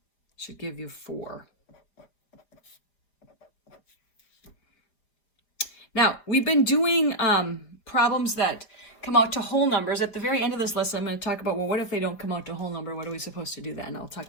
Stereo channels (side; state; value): right; late; 4.9 ms